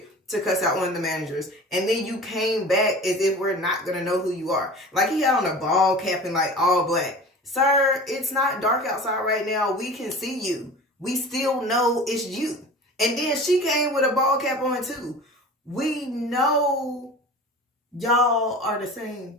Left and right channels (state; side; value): normal; both; correlation 0.38